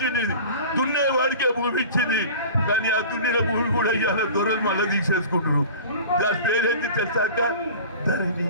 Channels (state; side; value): inverted; both; correlation -0.38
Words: దున్నేవాడికే భూమి ఇచ్చింది. కానీ ఆ దున్నిన భూమి కూడా ఇవాళ దొరలు మళ్ళీ తీసేసుకుంటారు. దాని పేరేంటి తెలుసాక? ధరణి.